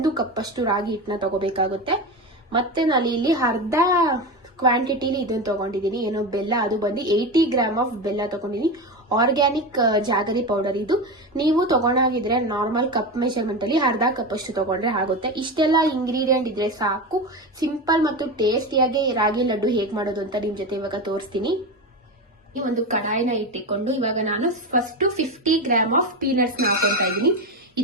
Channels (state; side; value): normal; both; correlation 0.20